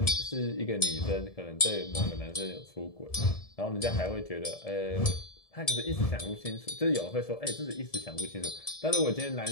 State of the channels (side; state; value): right; late; 1.7 ms